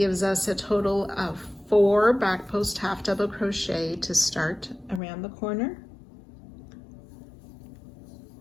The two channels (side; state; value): right; drops out; at 5.0 s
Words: us a total of 4 back post half double crochet to start around the corner.